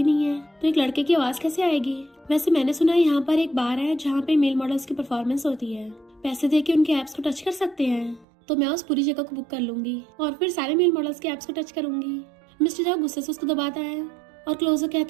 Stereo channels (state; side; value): drops out; left; at 8.2 s